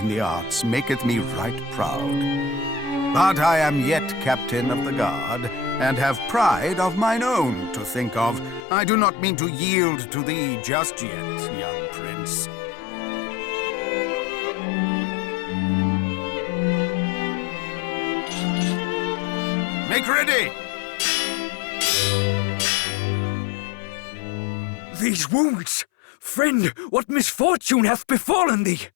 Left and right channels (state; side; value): drops out; right; at 8.7 s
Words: the arts maketh me right proud. But I am yet captain of the guard, and have pride of mine own to think of. I do not mean to yield to thee just yet, young prince. Make ready! These wounds! Friend, what misfortune hath befallen thee?